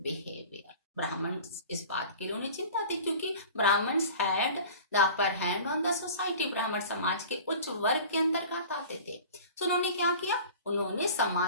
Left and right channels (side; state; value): both; inverted; correlation -0.40